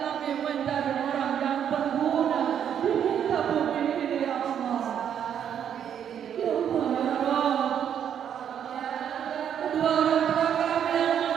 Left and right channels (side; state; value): left; quieter; 8.9 dB